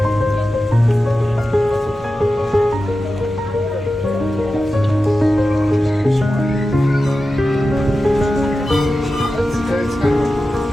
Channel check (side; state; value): both; normal; correlation 0.93